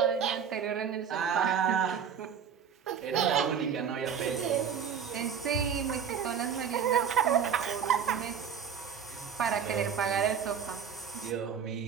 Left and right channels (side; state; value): left; quieter; 7.5 dB